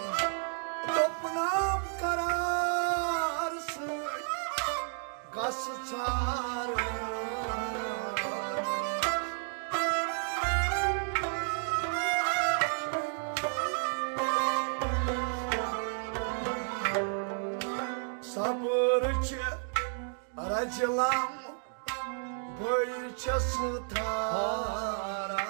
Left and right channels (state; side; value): silent; left; 57 dB below the other